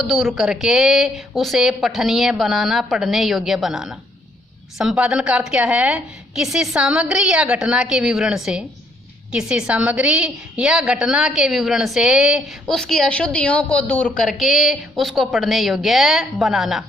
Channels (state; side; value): normal; both; correlation 0.69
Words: दूर करके उसे पठनीय बनाना, पढ़ने योग्य बनाना। संपादन का अर्थ क्या है? किसी सामग्री या घटना के विवरण से, किसी सामग्री या घटना के विवरण से उसकी अशुद्धियों को दूर करके उसको पढ़ने योग्य बनाना।